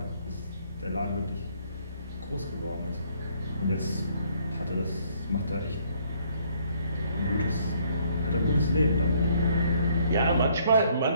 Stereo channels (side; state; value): both; inverted; correlation -0.66